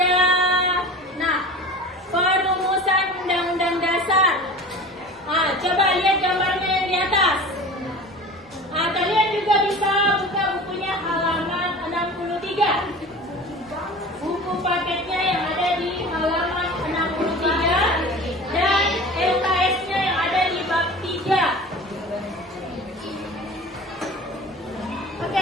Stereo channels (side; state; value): both; normal; correlation 0.37